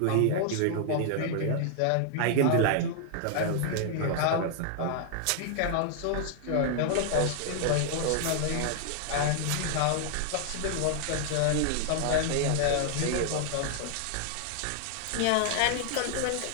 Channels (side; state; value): both; different; correlation 0.00